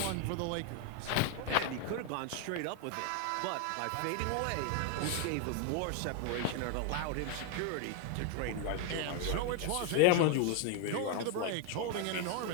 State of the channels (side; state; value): both; different; correlation 0.01